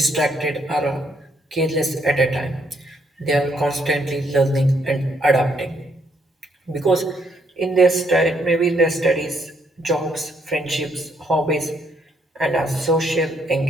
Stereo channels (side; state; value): both; normal; correlation 0.72